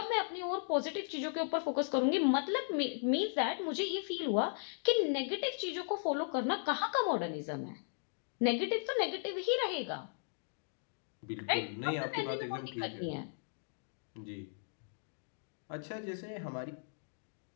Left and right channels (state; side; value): silent; right; digital silence